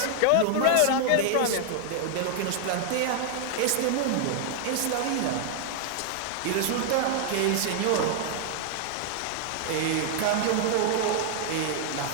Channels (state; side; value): different; both; correlation 0.00